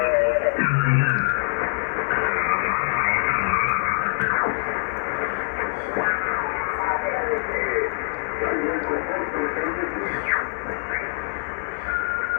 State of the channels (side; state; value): right; silent; digital silence